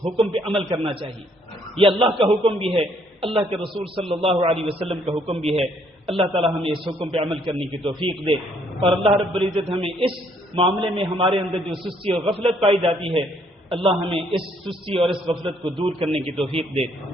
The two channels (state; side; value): normal; both; correlation 0.67